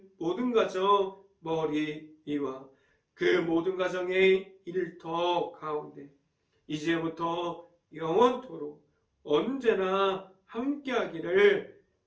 모든 가정 머리 위와 그 모든 가정의 일터 가운데 이제부터 영원토록 언제나 함께하기를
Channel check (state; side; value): identical; both; correlation 1.00